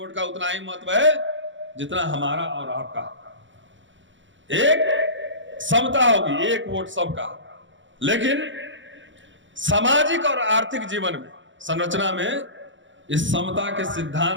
का उतना ही महत्व है जितना हमारा और आपका। एक समता होगी, एक वोट सबका। लेकिन सामाजिक और आर्थिक जीवन में, संरचना में इस समता के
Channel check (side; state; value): left; late; 0.55 ms